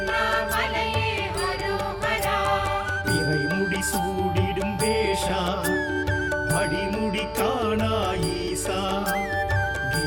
அரோகரா இறைமுடி சூடிடும் வேஷா அடிமுடி காணா ஈசா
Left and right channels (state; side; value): identical; both; correlation 1.00